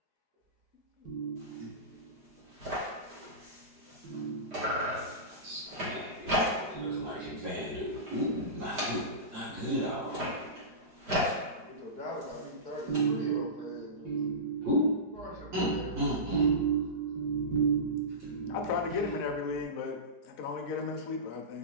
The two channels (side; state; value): left; late; 4.8 ms